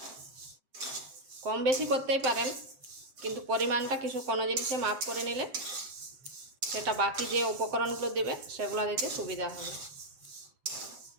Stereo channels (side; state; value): left; late; 7.7 ms